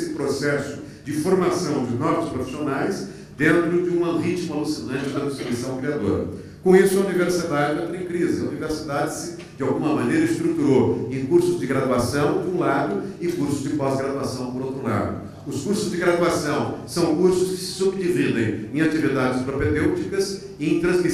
processo de formação de novos profissionais dentro de um ritmo alucinante da destruição criadora. Com isso, a universidade entra em crise. A universidade se, de alguma maneira, estruturou em cursos de graduação, de um lado, e cursos de pós-graduação, por outro lado. Os cursos de graduação são cursos que se subdividem em atividades propedêuticas e em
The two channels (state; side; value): identical; both; correlation 1.00